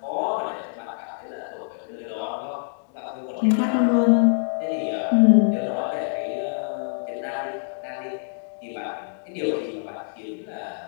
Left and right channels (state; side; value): silent; right; digital silence